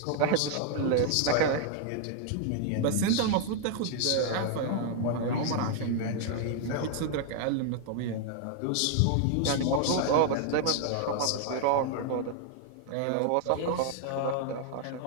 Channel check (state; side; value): different; both; correlation 0.00